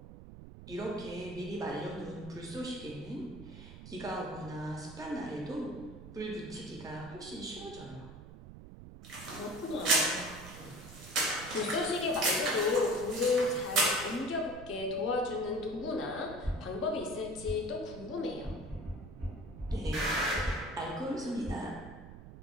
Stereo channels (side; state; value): right; noise; rumble, 14 dB below the sound